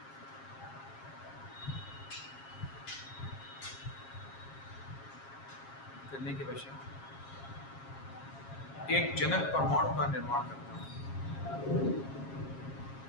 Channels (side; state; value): right; late; 7.4 ms